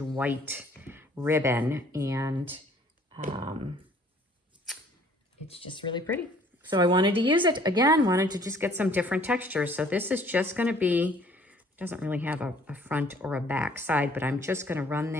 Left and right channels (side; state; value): both; normal; correlation 0.57